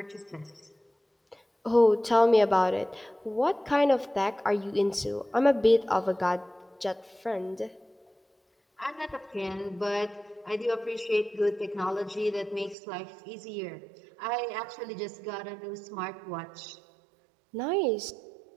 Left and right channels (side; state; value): left; drops out; at 12.8 s